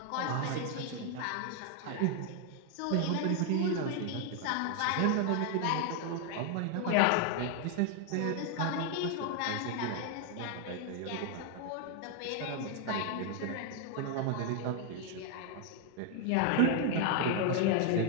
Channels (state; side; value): different; both; correlation 0.00